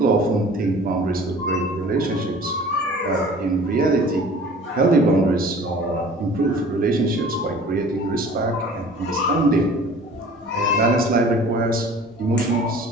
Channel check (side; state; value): both; normal; correlation 0.46